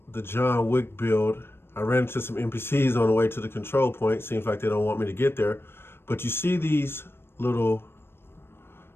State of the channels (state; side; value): late; right; 0.11 ms